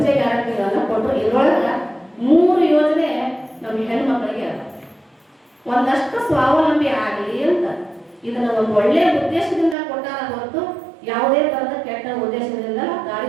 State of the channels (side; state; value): left; drops out; at 9.8 s